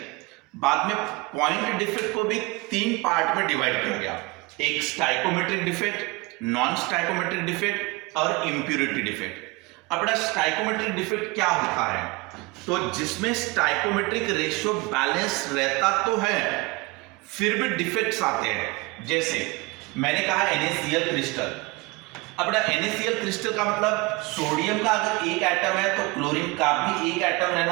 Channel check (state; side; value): quieter; left; 24.8 dB